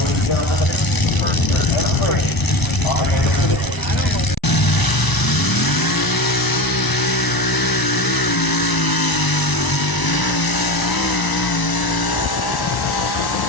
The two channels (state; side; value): late; right; 1.0 ms